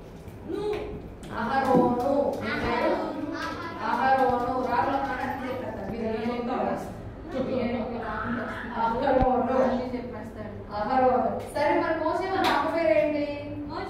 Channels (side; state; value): both; identical; correlation 1.00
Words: అహరోను. అహరోను. రాగుల చెప్పేస్తాడు. అహరోను. సరే మరి మోసే వాళ్ళ అమ్మ పేరేంటి?